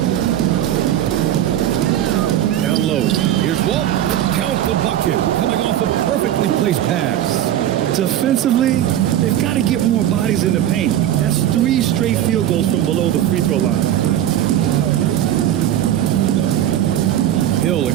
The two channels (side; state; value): left; quieter; 11.6 dB